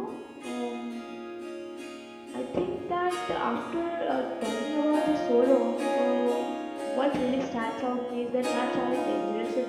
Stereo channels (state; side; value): identical; both; correlation 1.00